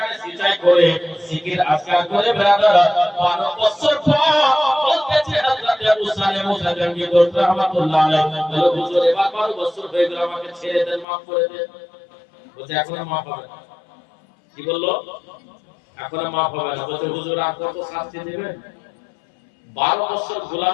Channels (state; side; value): drops out; right; at 11.1 s